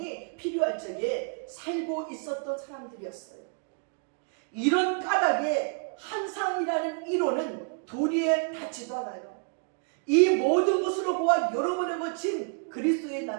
필요할 적에 살고 있었던 사람들이었어요. 이런 까닭에 환상이라는 이론은 도리에 닿지도 않아요. 이 모든 것으로 보아 여러 번에 거친 그리스도의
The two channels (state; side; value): quieter; left; 39.7 dB